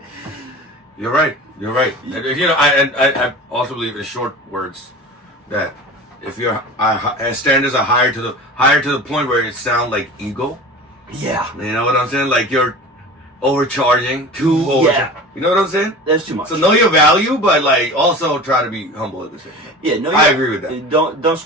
You're right. You're right. I also believe in short words that if your standards are higher to the point where it sounds like ego. Yeah. You know what I'm saying? Like you're overcharging, Yeah. You know what I'm saying? That's too much. So know your value, but like also try to be humble at the same time. Yeah, no, I agree with that. Don't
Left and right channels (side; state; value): both; normal; correlation 0.35